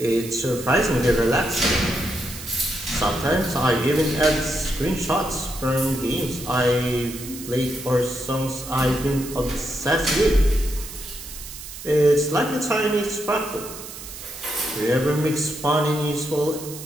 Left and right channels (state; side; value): noise; right; hiss, 12 dB below the sound